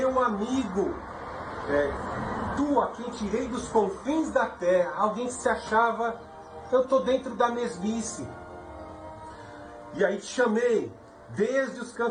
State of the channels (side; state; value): both; identical; correlation 1.00